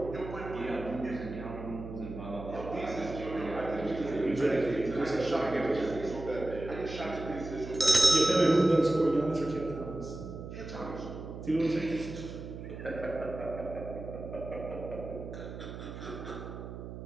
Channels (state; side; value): noise; right; hum, 10 dB below the sound